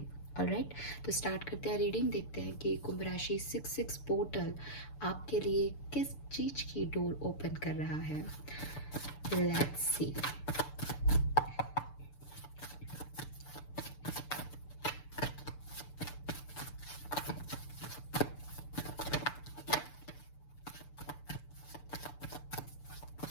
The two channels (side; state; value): right; late; 6.8 ms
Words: ऑलराइट, तो स्टार्ट करते हैं रीडिंग। देखते हैं कि कुंभ राशि 6-6 पोर्टल आपके लिए किस चीज़ की डोर ओपन कर रहा है। Let's see.